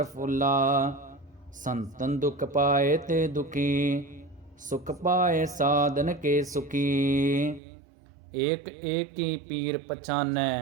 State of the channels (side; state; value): left; drops out; at 7.6 s